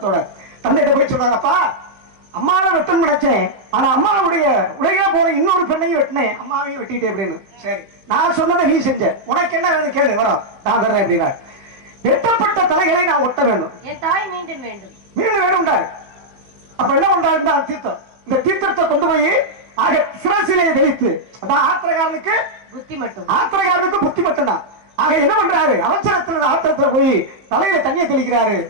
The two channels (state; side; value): late; left; 15 ms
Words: தந்தைகிட்ட போய் சொல்றாரு, அப்பா அம்மாவை வெட்டணும் நினைச்சேன், ஆனா அம்மாவுடைய உடையில போற இன்னொரு பெண்ணையும் வெட்டினேன், அம்மாவையும் வெட்டிட்டேன் அப்படின்னு. சரி நான் சொன்னதை நீ செஞ்ச, உனக்கு என்ன வேணும் கேளு, வரோம் நான் தர்றேன் அப்படின்னா. வெட்டப்பட்ட தலைகளை நான் ஒட்ட வேண்டும், என் தாய் மீண்டும் வேண்டும் மீண்டும் வேணும்டாரு. அப்ப என்ன பண்றாரு, தீர்த்தம், இந்த தீர்த்தத்தை கொண்டு போய் ஆக சிரசிலே தெளித்து, அதான் ஆத்திரக்காரனுக்கு புத்தி மட்டும் தான். ஆக என்ன பண்றாரு, அவசரத்துல ஆத்திரத்துல போய் தலையில தண்ணியை தெளிக்கிறாரு.